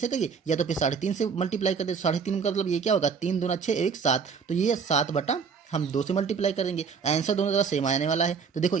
करिए, या तो फिर 3.5 से मल्टीप्लाई कर दे, 3.5 का मतलब ये क्या होगा 3 दूना 6 1 7, तो ये 7 हम 2 से मल्टीप्लाई करेंगे। आंसर दोनों तरह सेम आने वाला है, तो देखो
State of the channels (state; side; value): quieter; left; 5.9 dB